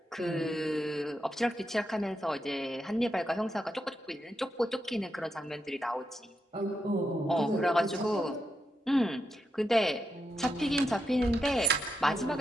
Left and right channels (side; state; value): both; normal; correlation 0.85